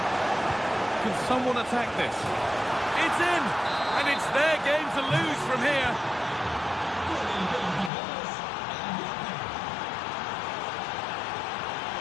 Can someone attack this? It's in! And it's their game to lose from here.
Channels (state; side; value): drops out; right; at 7.9 s